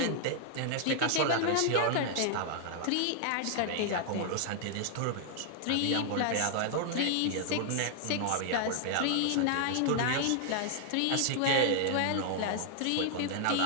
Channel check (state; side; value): different; both; correlation -0.01